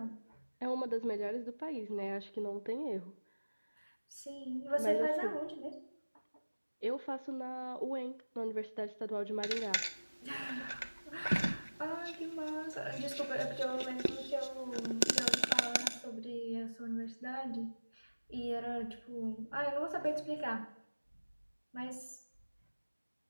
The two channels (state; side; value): inverted; both; correlation -1.00